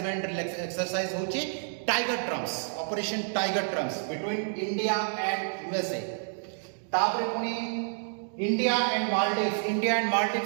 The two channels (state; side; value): silent; left; digital silence